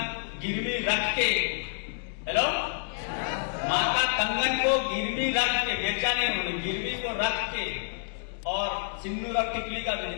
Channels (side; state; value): right; silent; digital silence